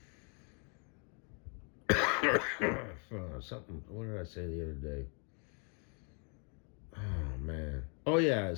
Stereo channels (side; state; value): right; quieter; 39.2 dB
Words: Something, what did I say the other day? Oh, man. Oh, yeah,